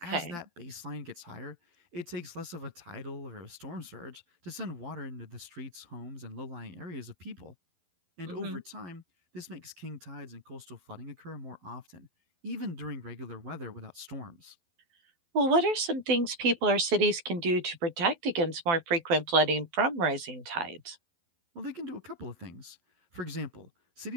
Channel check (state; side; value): late; left; 12 ms